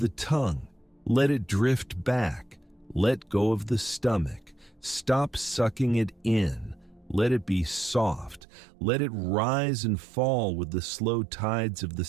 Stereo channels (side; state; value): left; drops out; at 8.4 s